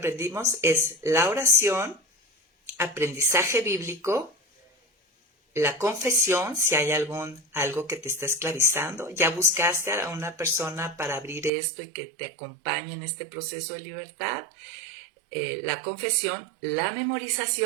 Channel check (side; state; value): left; drops out; at 11.5 s